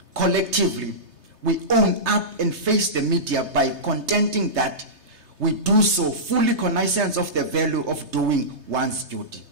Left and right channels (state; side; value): late; left; 3.3 ms